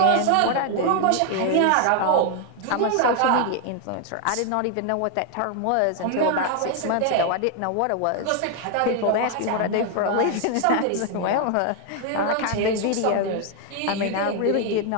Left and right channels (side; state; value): both; different; correlation 0.00